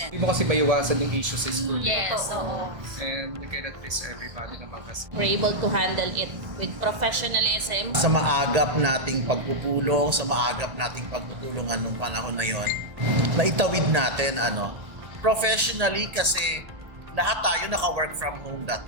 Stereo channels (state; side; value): late; left; 1.7 ms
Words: Hindi mo kasi maiwasan yung issue sa school. Yes, oo. And we cannot please everybody naman kasi. We're able to handle it with professionalism. Sa maagap nating pagpupulong, sa maagap nating pagtutulungan nung panahon na yon, naitawid natin professionally kasi lahat tayo naka-work from home that